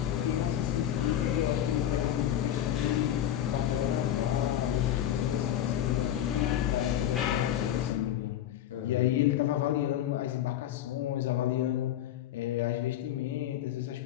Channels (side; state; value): right; quieter; 11.4 dB